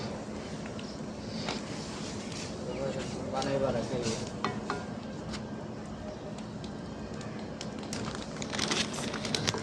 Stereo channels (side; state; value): both; identical; correlation 1.00